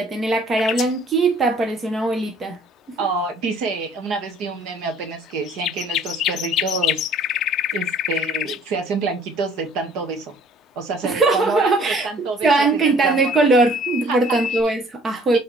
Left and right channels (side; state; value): both; normal; correlation 0.55